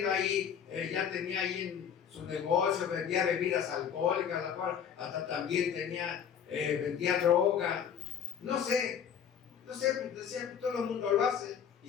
ahí, ya tenía ahí en su negocio, vendía bebidas alcohólicas, la cual hasta también vendía droga. No sé, decía que todo el mundo lo hace. Y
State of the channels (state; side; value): quieter; right; 8.1 dB